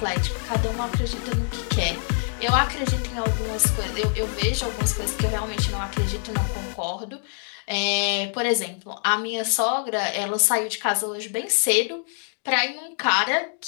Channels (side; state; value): right; silent; 56 dB below the other